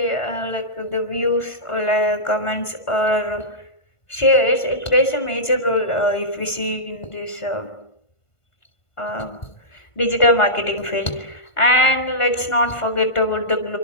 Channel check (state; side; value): late; right; 1.5 ms